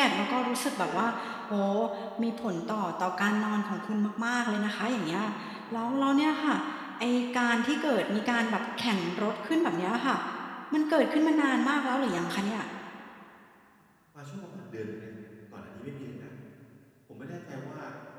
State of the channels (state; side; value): identical; both; correlation 1.00